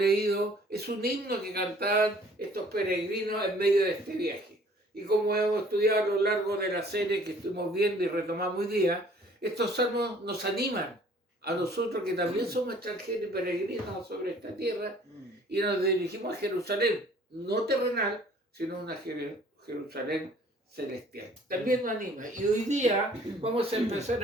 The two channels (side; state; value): both; normal; correlation 0.55